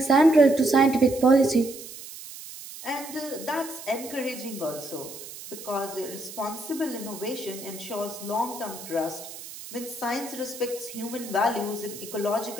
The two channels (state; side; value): noise; right; hiss, 13 dB below the sound